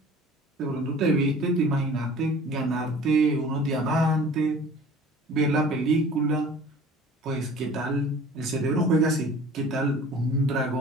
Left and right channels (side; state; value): both; normal; correlation 0.45